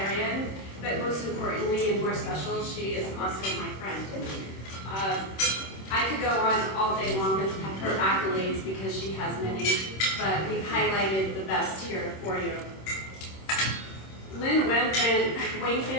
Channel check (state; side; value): late; right; 26 ms